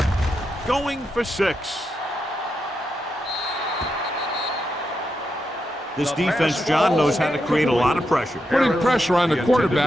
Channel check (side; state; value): both; normal; correlation 0.85